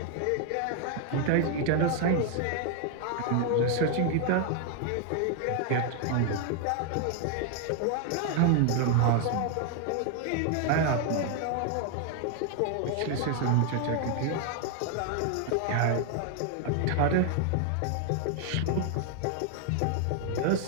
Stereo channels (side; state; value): both; different; correlation 0.00